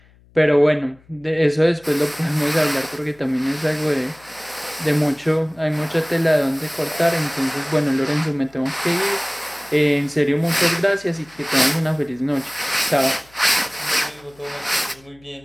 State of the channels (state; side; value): noise; left; hum, 29 dB below the sound